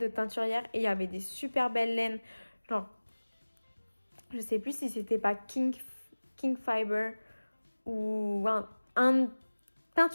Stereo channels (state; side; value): inverted; both; correlation -1.00